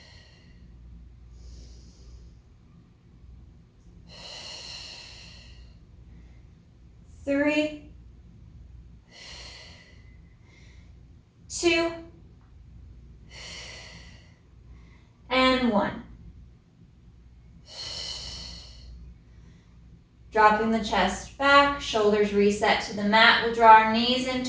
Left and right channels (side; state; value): both; identical; correlation 1.00